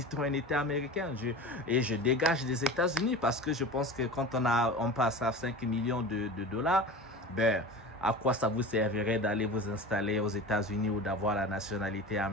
américaine. Et je dégage des États-Unis, parce que je pense que quand on passe à 5 millions de dollars, ben, à quoi ça vous servirait d'aller vous installer aux États-Unis ou d'avoir la nationalité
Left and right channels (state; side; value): normal; both; correlation 0.33